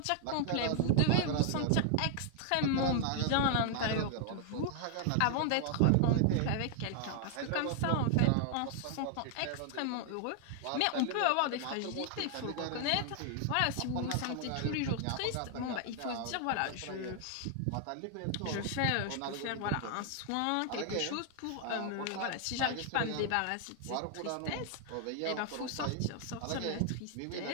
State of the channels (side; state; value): both; different; correlation 0.00